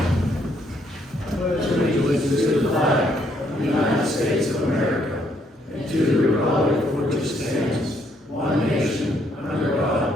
Pledge allegiance to the flag of the United States of America and to the republic for which it stands, one nation, under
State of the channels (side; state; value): both; normal; correlation 0.71